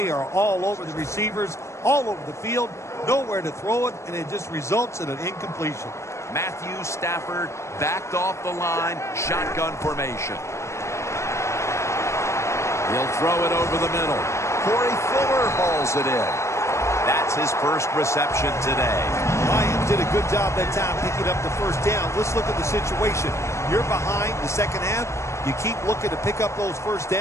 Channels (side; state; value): right; late; 0.14 ms